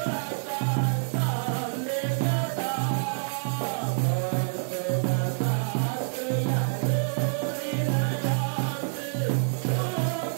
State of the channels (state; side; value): silent; left; 60 dB below the other